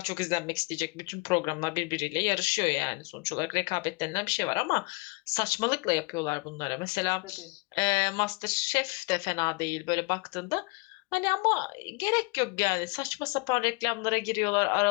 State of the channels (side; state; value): right; quieter; 28.3 dB